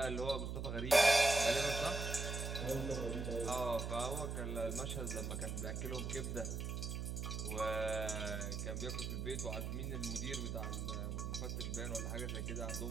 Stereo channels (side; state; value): right; noise; hum, 3 dB below the sound